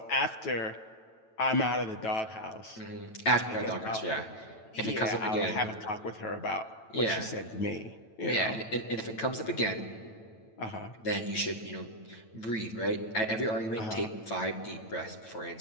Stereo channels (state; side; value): late; right; 9.1 ms